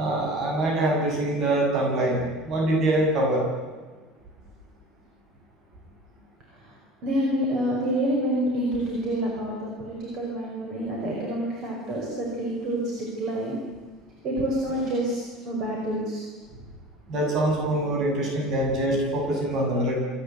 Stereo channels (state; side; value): normal; both; correlation 0.40